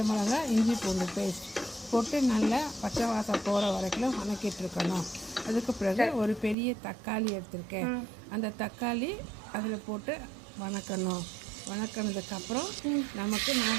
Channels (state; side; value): drops out; left; at 6.6 s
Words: மிளகாய் இஞ்சி பூண்டு பேஸ்ட் போட்டு நல்லா பச்சை வாசம் போகிற வரைக்கும் வதக்கிட்டுருக்கணும். அதுக்கு பிறகு ஒரு பெரிய தக்காளி எடுத்திருக்கேன். அந்த தக்காளி அதில் போட்டு வணக்கினதுக்கப்புறம் நமக்கு